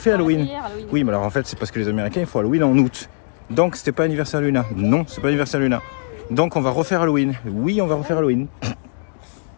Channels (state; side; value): silent; right; digital silence